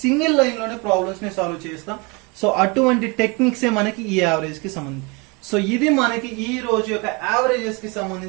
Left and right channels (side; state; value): left; quieter; 28.4 dB